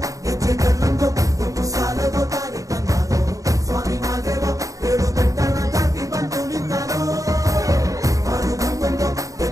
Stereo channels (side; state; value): left; late; 0.16 ms